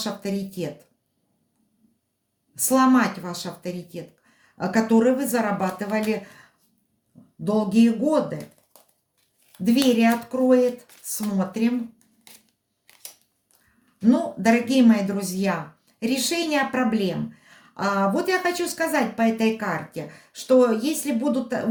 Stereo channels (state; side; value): identical; both; correlation 1.00